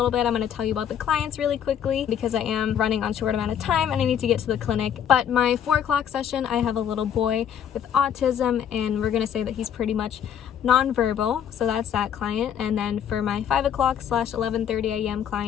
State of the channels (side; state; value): right; quieter; 9.0 dB